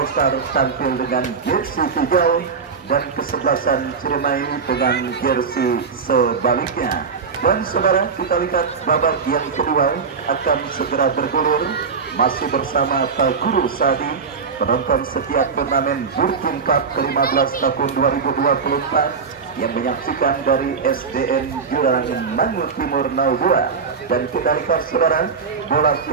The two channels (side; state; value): left; quieter; 5.4 dB